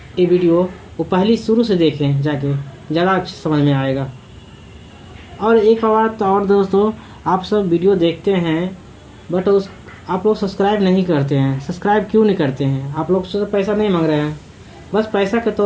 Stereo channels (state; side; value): identical; both; correlation 1.00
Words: ये वीडियो, वो पहली शुरू से देखें, जाके ज़्यादा अच्छे समझ में आएगा। और एक बात और दोस्तों, आप सब वीडियो देखते हैं बट आप लोग सब्सक्राइब नहीं करते हैं। सब्सक्राइब क्यों नहीं करते हैं? आप लोग से पैसा नहीं मांग रहे हैं, बस पैसा के